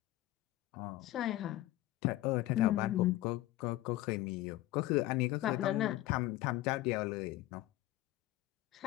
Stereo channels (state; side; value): quieter; right; 16.2 dB